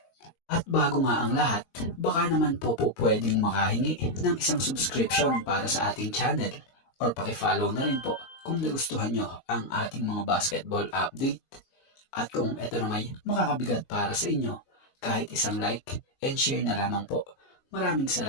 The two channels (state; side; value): late; right; 22 ms